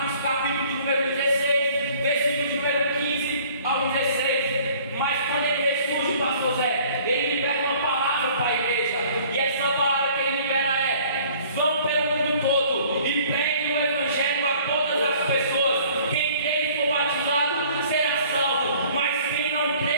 capítulo de número 16, versículo de número 15 ao 16. Mas quando ele ressurge, pastor Zé, ele libera uma palavra para a igreja, e essa palavra que ele libera é: vão pelo mundo todo e preguem o Evangelho a todas as pessoas. Quem crê e for batizado será salvo, mas quem não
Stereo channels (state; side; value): inverted; both; correlation -0.53